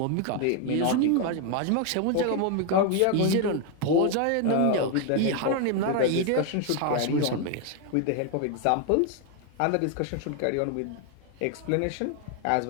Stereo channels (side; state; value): both; different; correlation 0.01